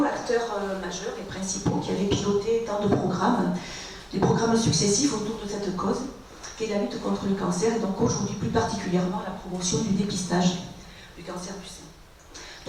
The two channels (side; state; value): both; identical; correlation 1.00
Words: acteurs majeurs et principaux qui avaient piloté tant de programmes, des programmes successifs autour de cette cause, qu'est la lutte contre le cancer, et donc aujourd'hui plus particulièrement la promotion du dépistage du cancer du sein.